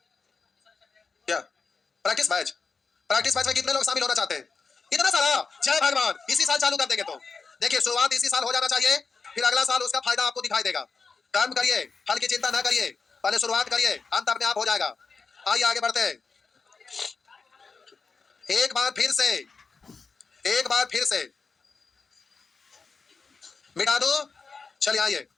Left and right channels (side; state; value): right; quieter; 4.8 dB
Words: प्रैक्टिस मैच में कितने लोग शामिल होना चाहते हैं? इतना सारा। जय भगवान। इसी साल चालू कर देंगे तो देखिए, शुरुआत इसी साल हो जाना चाहिए, फिर अगला साल उसका फायदा आपको दिखाई देगा। कर्म करिए, फल की चिंता ना करिए, पहले शुरुआत करिए, अंत अपने आप हो जाएगा। आइए आगे बढ़ते हैं। एक बार फिर से मिटा दो। चलिए आइए,